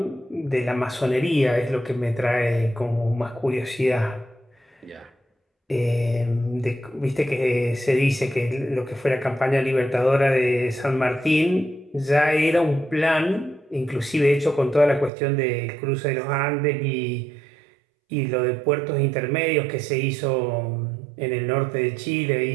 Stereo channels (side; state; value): left; drops out; at 15.1 s